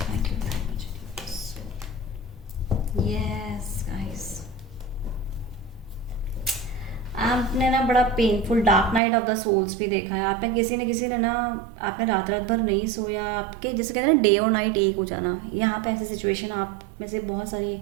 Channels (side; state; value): left; drops out; at 9.0 s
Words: Thank you very much universe. Yes guys, आपने ना बड़ा painful dark night of the souls भी देखा है। आपने किसी ने ना, आपने रात भर नहीं सोया, आपके जैसे कहते हैं ना डे और नाइट एक हो जाना। यहाँ पे ऐसी सिचुएशन आप में से बहुत सारी